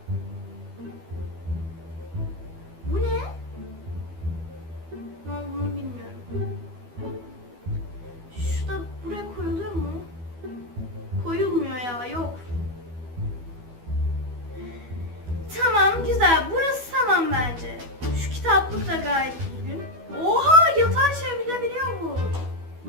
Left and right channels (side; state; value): left; late; 12 ms